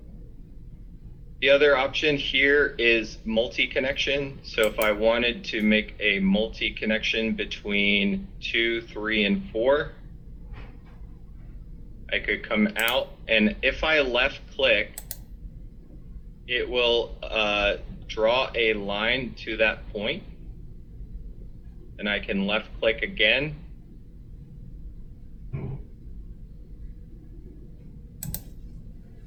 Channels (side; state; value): both; identical; correlation 1.00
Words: The other option here is multi-connection. So if I wanted to make a multi-connection between 2, 3, and 4, I could come out, and if I left click, it will draw a line to that point, and I can left click again.